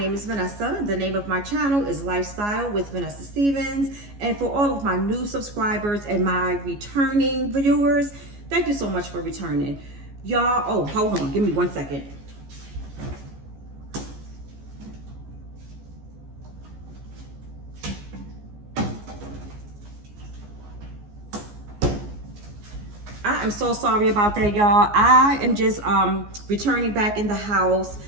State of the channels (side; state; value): left; late; 14 ms